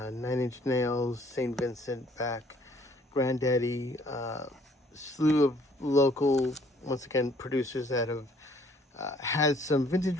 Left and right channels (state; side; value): normal; both; correlation 0.61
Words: Inch Nails, St. Vincent, Beck, Granddaddy, slew of local, once again, producers that have had some vintage